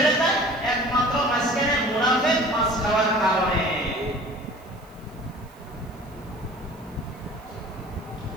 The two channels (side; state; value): right; noise; hiss, 29 dB below the sound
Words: যায় একমাত্র মাঝখানে মুনাফিক মাছ খাওয়ার কারণে।